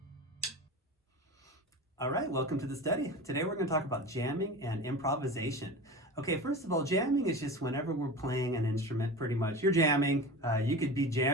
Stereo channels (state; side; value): normal; both; correlation 0.31